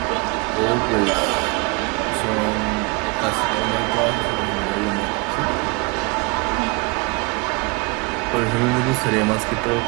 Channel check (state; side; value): quieter; left; 29.4 dB